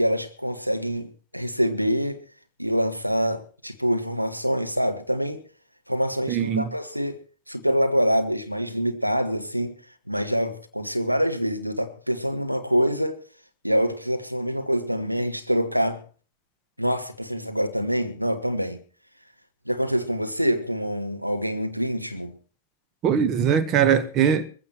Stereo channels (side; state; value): both; inverted; correlation -0.71